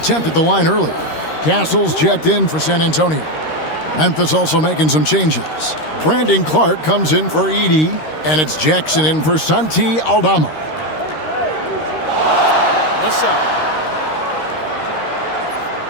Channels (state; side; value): late; right; 13 ms